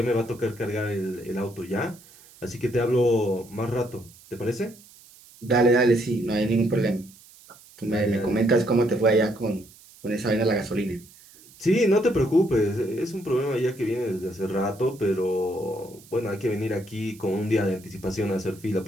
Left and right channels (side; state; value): right; noise; hiss, 24 dB below the sound